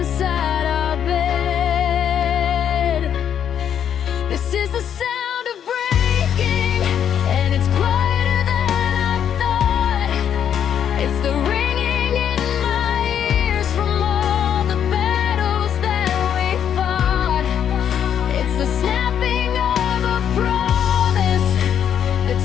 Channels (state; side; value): quieter; right; 9.0 dB